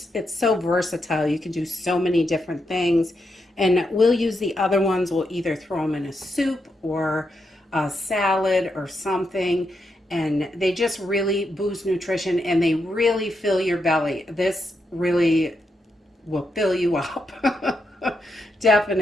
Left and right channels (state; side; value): normal; both; correlation 0.83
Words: it's so versatile. You can do so many different things. And we'll use the other ones. We'll either throw them in a soup or a salad or something. And they just really boost nutrition and they really fill your belly. This really will fill you up.